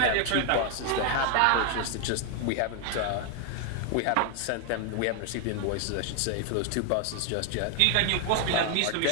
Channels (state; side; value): different; both; correlation 0.00